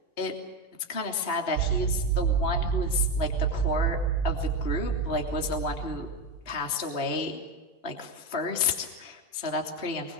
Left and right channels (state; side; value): late; right; 3.0 ms